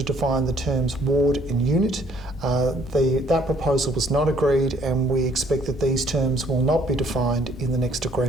define the terms ward and unit. That proposal was not agreed, and we expect that these terms will not be defined in the next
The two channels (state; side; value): normal; both; correlation 0.62